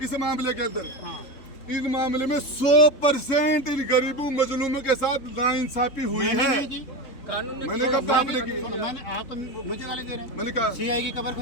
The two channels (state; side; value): late; right; 3.7 ms